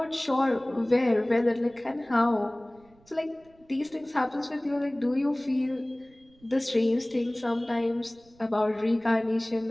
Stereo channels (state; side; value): noise; right; rumble, 30 dB below the sound